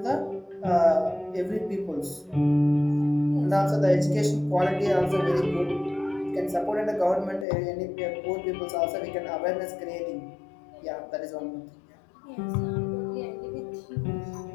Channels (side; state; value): right; drops out; at 7.5 s